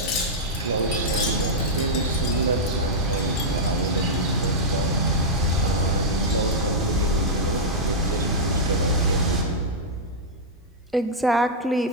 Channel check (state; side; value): normal; both; correlation -0.07